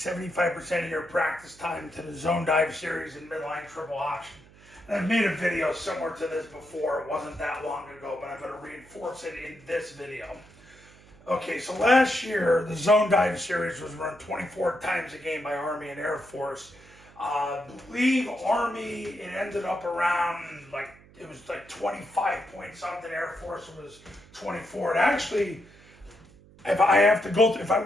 of your practice time to the zone dive series and midline triple option. And I've made a video similar to this before. It wasn't that long ago, but I'm going to reinforce it in this video. Okay, so last year, the zone dive series was run 24 times a game by Army and Air Force. I believe Army, it ended up around it was 25 point something. Air Force was 24. And actually, if I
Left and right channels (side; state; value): right; noise; hum, 24 dB below the sound